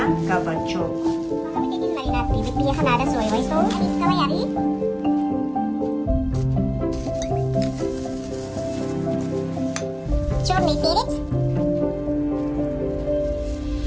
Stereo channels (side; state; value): both; identical; correlation 1.00